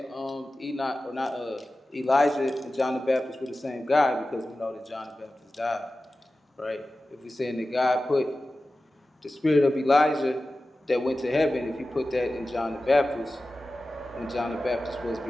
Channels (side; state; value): both; normal; correlation 0.95